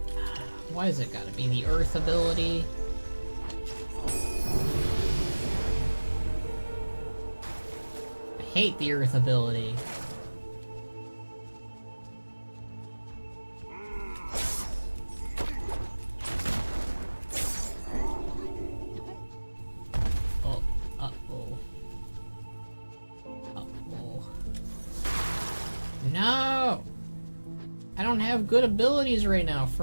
Why has it gotta be the earth ability? I hate the earth ability. No! I don't have good abilities right now,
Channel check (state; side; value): inverted; both; correlation -1.00